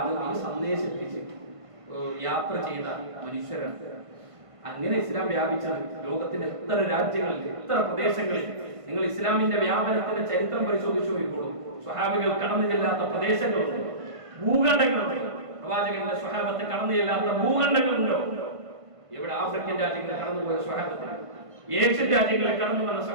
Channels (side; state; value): left; late; 1.5 ms